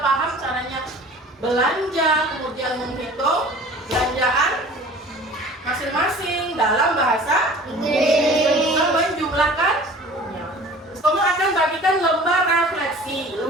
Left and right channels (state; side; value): normal; both; correlation 0.45